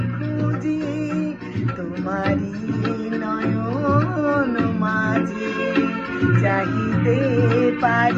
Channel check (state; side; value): identical; both; correlation 1.00